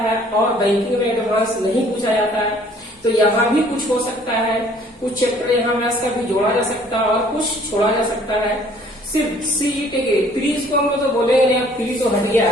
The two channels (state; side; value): normal; both; correlation 0.57